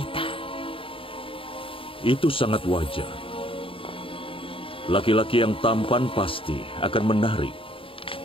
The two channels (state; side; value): late; right; 0.26 ms